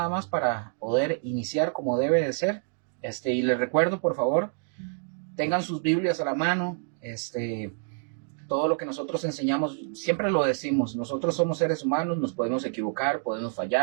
más para poder iniciar como debe de ser. Y les recuerdo, por favor, tengan sus Biblias a la mano. Todo lo que nosotros enseñamos, siempre lo decimos, nosotros somos seres humanos, nos podemos equivocar, podemos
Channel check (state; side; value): silent; left; 60 dB below the other